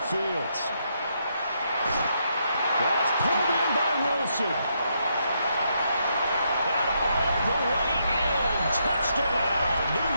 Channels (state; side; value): inverted; both; correlation -0.78